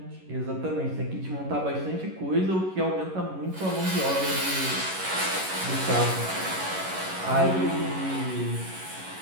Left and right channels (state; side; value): late; left; 11 ms